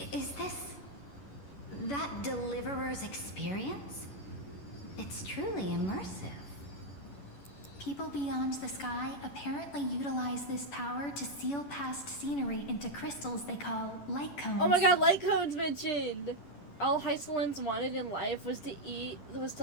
Is this that deliverer's experience? It's truly immersive. People beyond the sky apparently utilize this power to seal past scenery into crystals they call light cones. Oh my god, light cones mentioned! All Hysolins wanted in life was to eat,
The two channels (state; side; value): late; right; 11 ms